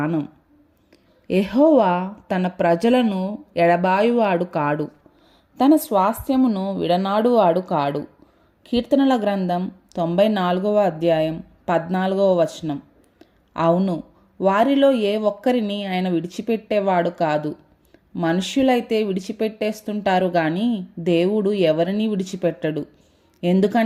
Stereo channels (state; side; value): identical; both; correlation 1.00